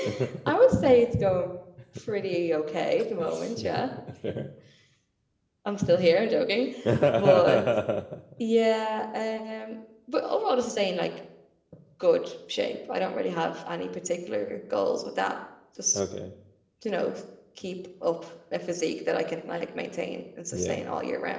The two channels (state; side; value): identical; both; correlation 1.00